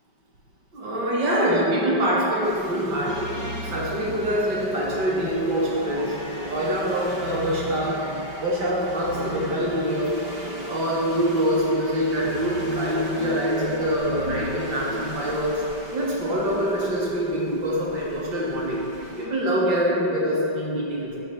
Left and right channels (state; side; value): late; left; 5.1 ms